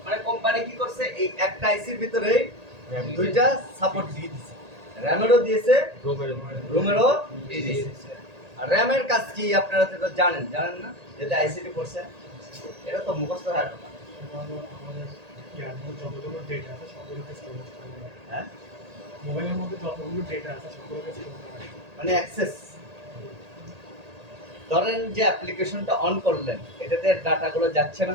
মানে কোম্পানি কি করছে, এই একটা আইসির ভিতরে দুইটা সাপোর্ট দিয়ে দিয়েছে, র‍্যামেরও দিয়েছে, রুমেরও দিয়ে দিয়েছে। আর র‍্যামের কাজ কি আপনারা তো জানেন না? যেটা আইসিটি করছে, এটা তো মুখস্থ হয় না। যতগুলো ডেটা আছে সবগুলোকে স্টোর করতে হবে। হ্যাঁ, মোবাইলের মধ্যে যতগুলো ডেটা আছে সবগুলোকে স্টোর করতে হবে। মানে অ্যাক্সেস। ধরেন যে অ্যাপ্লিকেশনটা অন করলেন, এটাতে ডাটাগুলো যাচ্ছে না,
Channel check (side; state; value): left; late; 1.8 ms